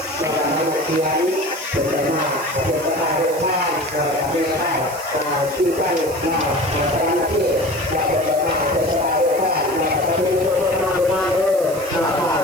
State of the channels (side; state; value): right; noise; hiss, 14 dB below the sound